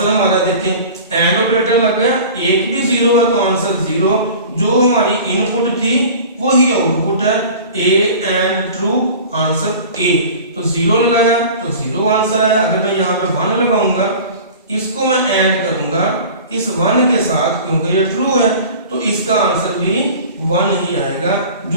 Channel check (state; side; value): inverted; both; correlation -0.40